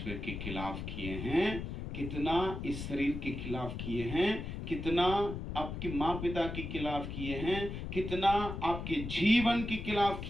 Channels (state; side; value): noise; left; rumble, 6 dB below the sound